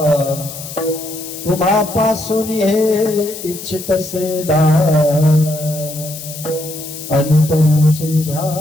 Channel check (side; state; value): left; noise; hiss, 11 dB below the sound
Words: तुम्हापासून हे इच्छितसे दान, अंतरीचे